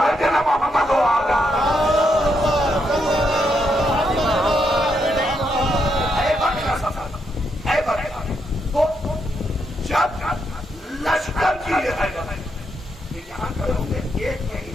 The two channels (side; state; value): both; normal; correlation 0.79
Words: نا محمد و آلہ. جب لشکر کی یہاں کروں گے ایک